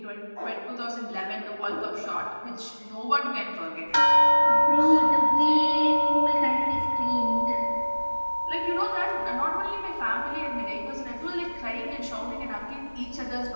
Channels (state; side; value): inverted; both; correlation -1.00